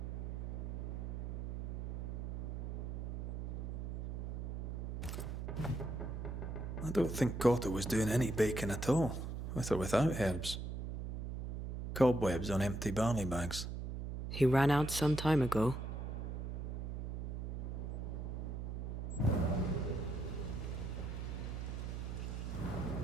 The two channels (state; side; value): noise; right; hum, 4 dB below the sound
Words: I don't think Cotto was doing any baking at all, with or without herbs. Cobwebs on empty barley bags. He ran out some time ago.